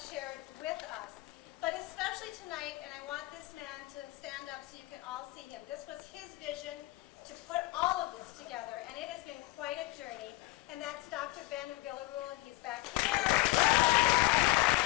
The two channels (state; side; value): quieter; right; 19.8 dB